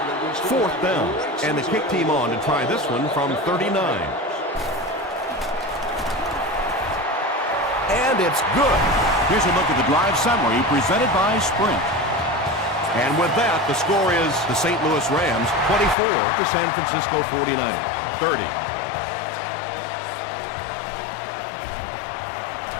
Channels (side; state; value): right; drops out; at 16.0 s